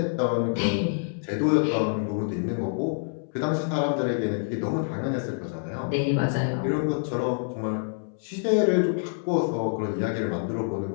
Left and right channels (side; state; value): right; silent; 60 dB below the other